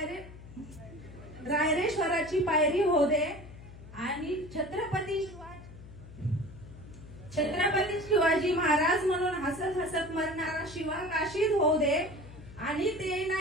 रायरेश्वराची पायरी हो दे, आणि छत्रपती शिवाजी महाराज म्हणून हसत हसत मरणारा शिवा काशीद होऊ दे, आणि ते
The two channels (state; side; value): noise; left; hum, 17 dB below the sound